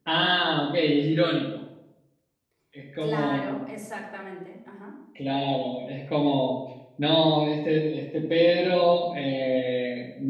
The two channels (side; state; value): both; identical; correlation 1.00